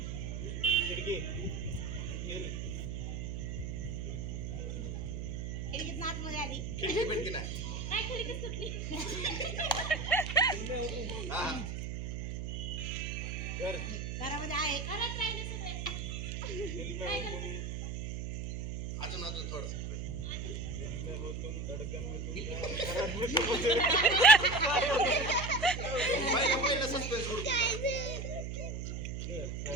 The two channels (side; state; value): right; noise; hum, 4 dB below the sound